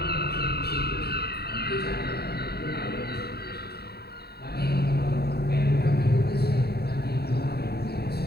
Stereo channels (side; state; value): right; late; 0.46 ms